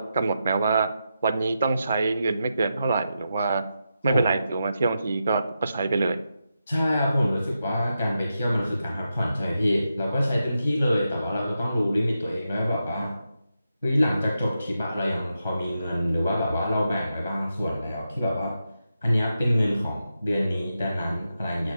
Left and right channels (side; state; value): both; inverted; correlation -0.87